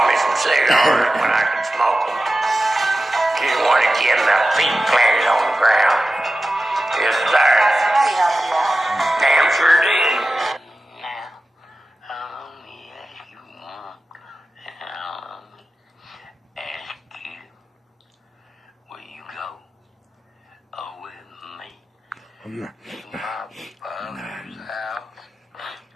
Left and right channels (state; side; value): normal; both; correlation 0.94